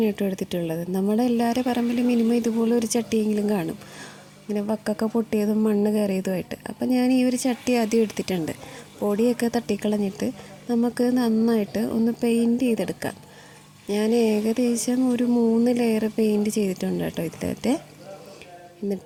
കേട്ടോ എടുത്തിട്ടുള്ളത്. നമ്മുടെ എല്ലാവരുടെ പറമ്പിലും മിനിമം ഇതുപോലെ ഒരു ചട്ടിയെങ്കിലും കാണും, ഇങ്ങനെ വക്കൊക്കെ പൊട്ടിയതും മണ്ണ് കയറിയതുമായിട്ട്. അപ്പോൾ ഞാൻ ഈ ഒരു ചട്ടി ആദ്യം എടുത്തിട്ടുണ്ട്. പൊടിയൊക്കെ തട്ടിക്കളഞ്ഞിട്ട് നമുക്ക് നന്നായിട്ട് ഒന്ന് പെയിൻറ്റ് ചെയ്തെടുക്കാം. ഞാൻ ഏകദേശം ഒരു 3 ലെയർ പെയിൻറ്റ് ചെയ്തിട്ടുണ്ട് കേട്ടോ ഇതിലത്തെ.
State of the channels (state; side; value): identical; both; correlation 1.00